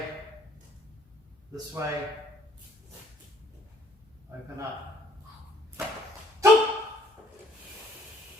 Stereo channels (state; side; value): normal; both; correlation 0.62